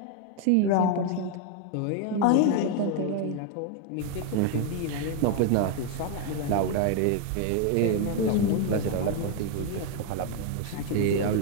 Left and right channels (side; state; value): both; different; correlation 0.01